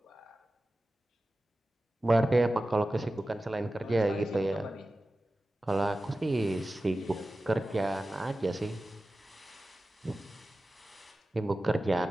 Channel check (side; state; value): both; normal; correlation 0.95